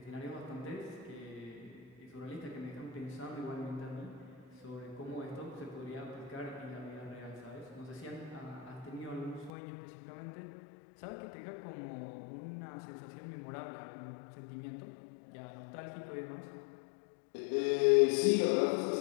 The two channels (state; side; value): drops out; right; at 9.5 s